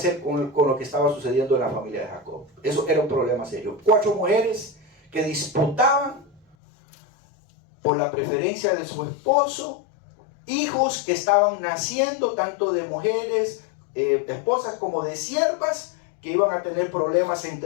con lo que estaba sucediendo en la familia de Jacob. Eso era un problema serio. 4 mujeres que disputaban por la preferencia de su esposo, hijos que estaban naciendo tanto de mujeres, esposas como de siervas, que iban a tener problemas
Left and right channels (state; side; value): drops out; right; at 6.6 s